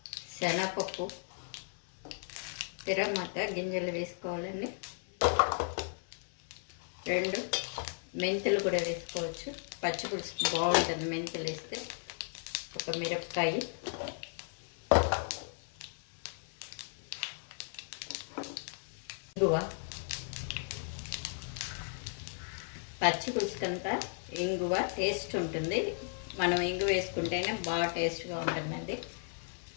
శనగపప్పు, తిరగమాత గింజలు వేసుకోవాలండి. 2 మెంతులు కూడా వేసుకోవచ్చు. పచ్చి పులుసు బాగుంటుంది మెంతులు వేస్తే. 1 మిరపకాయ, ఇంగువ. పచ్చి పులుసుకంతా ఇంగువ టేస్ట్ ఉంటుంది. మనం ఇంగువ వేసుకుంటేనే బాగా టేస్ట్గా ఉంటుందండి.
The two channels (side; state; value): right; silent; 54 dB below the other